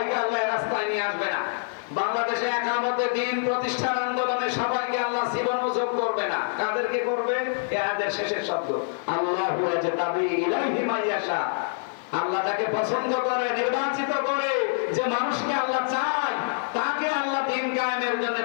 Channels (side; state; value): right; silent; 61 dB below the other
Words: আল্লাহ রাস্তায় নিয়ে আসবে না। বাংলাদেশে একামতে দিন প্রতিষ্ঠান আন্দোলনে সবাইকে আল্লাহ জীবন যোগ করবে না। কাদেরকে করবে? এদের শেষের শব্দ আল্লাহু ইয়াজতাবি ইলাইহি মাইয়াশা। আল্লাহ যাকে পছন্দ করে, নির্বাচিত করে, যে মানুষকে আল্লাহ চায়, তাকে আল্লাহ দিন কায়েমের জন্য